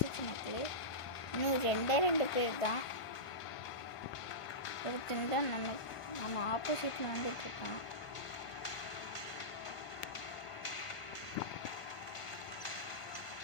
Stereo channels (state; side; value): late; right; 1.5 ms